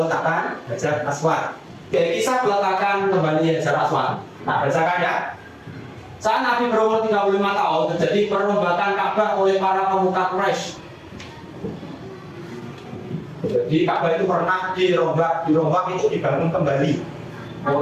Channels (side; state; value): both; identical; correlation 1.00